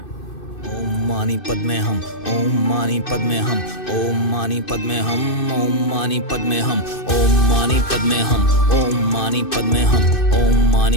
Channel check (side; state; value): right; late; 2.6 ms